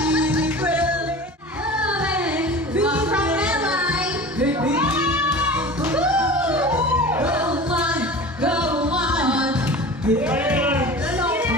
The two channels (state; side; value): normal; both; correlation 0.36